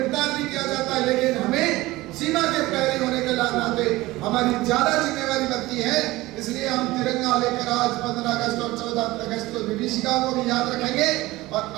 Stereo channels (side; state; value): left; quieter; 19.1 dB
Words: भी किया जाता है। लेकिन हमें सीमा के प्रहरी होने के नाते हमारी ज्यादा जिम्मेवारी बनती है। इसलिए हम तिरंगा लेकर आज 15 अगस्त और 14 अगस्त को विभीषिका को भी याद रखेंगे, और